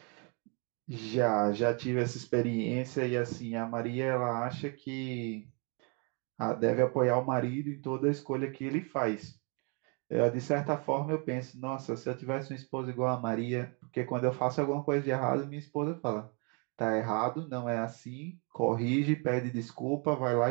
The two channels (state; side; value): quieter; left; 35.5 dB